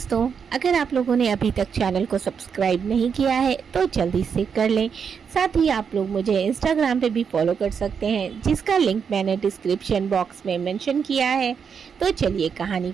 अगर आप लोगों ने अभी तक चैनल को सब्सक्राइब नहीं किया है तो जल्दी से कर लें। साथ ही आप लोग मुझे इंस्टाग्राम पे भी फॉलो कर सकते हैं, जिसका लिंक मैंने डिस्क्रिप्शन बॉक्स में मेंशन किया है। तो चलिए कहानी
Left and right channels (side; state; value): left; quieter; 6.7 dB